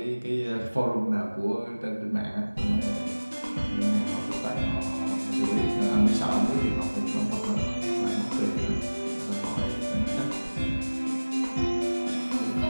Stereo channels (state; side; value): inverted; both; correlation -1.00